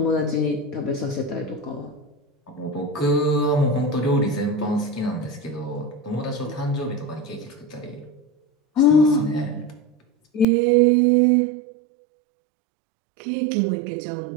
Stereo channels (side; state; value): left; drops out; at 10.5 s